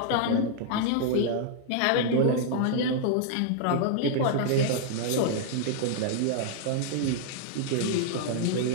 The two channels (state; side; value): different; both; correlation -0.01